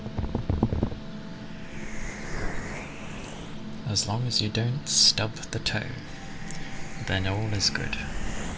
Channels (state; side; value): identical; both; correlation 1.00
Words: As long as you don't stub the toe, then all is good.